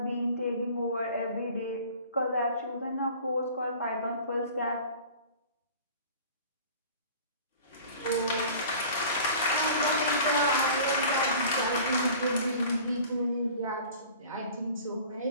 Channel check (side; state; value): both; inverted; correlation -0.44